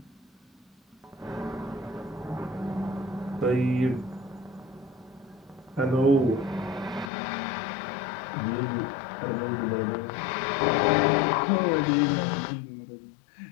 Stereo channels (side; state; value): right; drops out; at 7.1 s